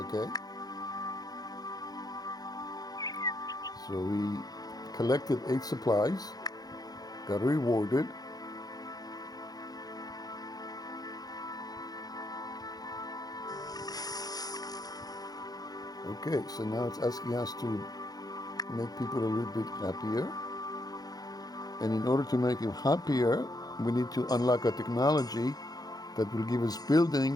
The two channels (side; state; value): right; late; 0.19 ms